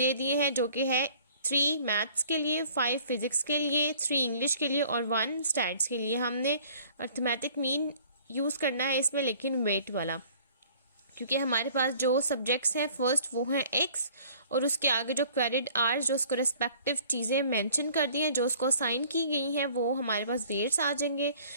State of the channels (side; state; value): both; inverted; correlation -0.53